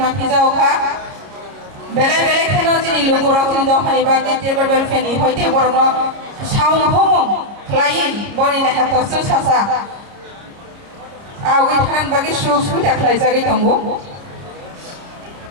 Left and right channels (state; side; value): late; left; 30 ms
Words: jauh kah. Bela-bela kena jadi lugu rakun dah hari bagi table welfare ni, hoite borno saung homong, klien borni dah hatau susah. Awak kanan bagi susu dah klien jadi tunggu.